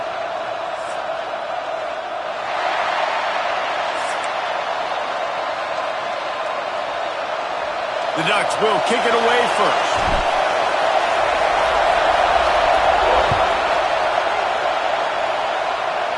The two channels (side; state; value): both; identical; correlation 1.00